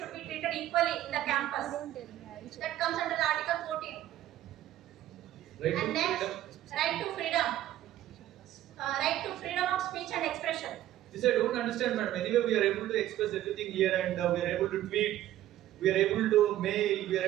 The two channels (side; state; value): left; quieter; 13.4 dB